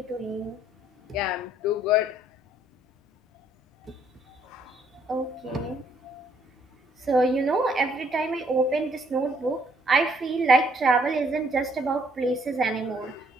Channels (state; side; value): normal; both; correlation 0.66